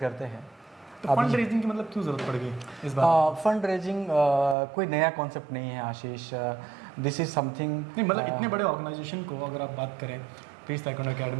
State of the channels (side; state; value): left; drops out; at 4.5 s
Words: हैं। तो फंड रेजिंग की मतलब क्यों जरूरत पड़ गई इस बार? फंड रेजिंग कोई नया कॉन्सेप्ट नहीं है आशीष। दिस इज समथिंग नहीं, मतलब इतने बड़े ऑर्गेनाइजेशन को अगर आप बात करें पीस ताइक्वांडो